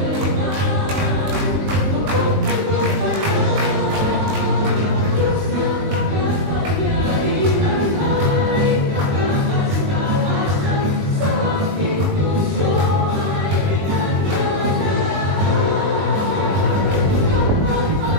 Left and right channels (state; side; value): late; left; 21 ms